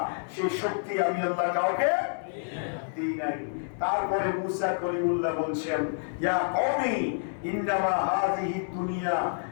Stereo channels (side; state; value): right; silent; 59 dB below the other